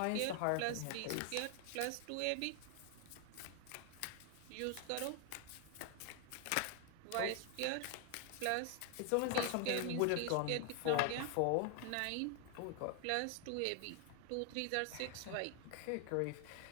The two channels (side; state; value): both; different; correlation 0.00